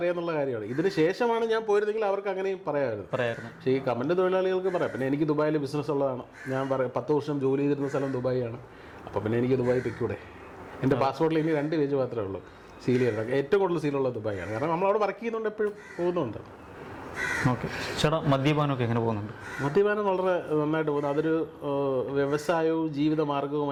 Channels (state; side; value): identical; both; correlation 1.00